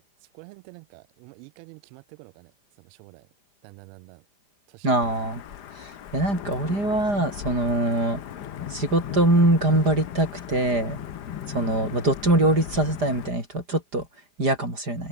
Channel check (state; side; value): late; left; 4.9 ms